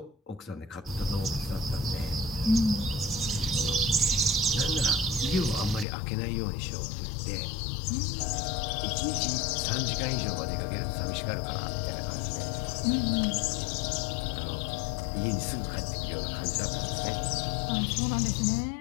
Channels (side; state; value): right; drops out; at 5.9 s